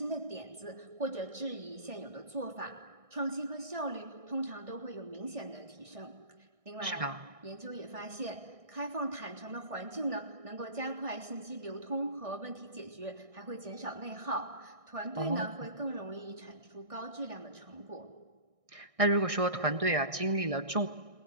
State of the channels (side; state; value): left; late; 1.6 ms